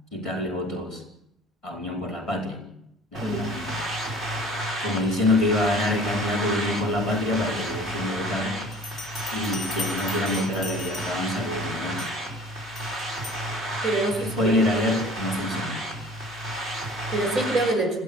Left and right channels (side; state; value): both; normal; correlation 0.47